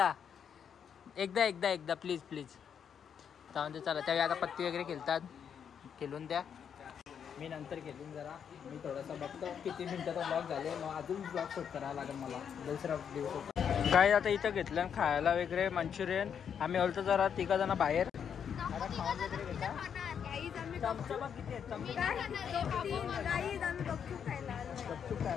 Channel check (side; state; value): right; quieter; 7.8 dB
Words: प्लीज जाऊन दे. चला त्यावेळी आता पत्ती वगैरे खेळतात. खेळून द्या. मी नंतर घेऊन जरा मी थोडासा बघतो किती मिनिटाचा ब्लॉग झाले. मग अजून ब्लॉग शूट करायला लागेल मला दुसरा दिवस. काय आता इथं घेतलं खायला वगैरे मंचुरियन. आम्ही होतो जरा 3 जण बाहेर. आता खाऊन वगैरे घेता. चमचा किती आहेत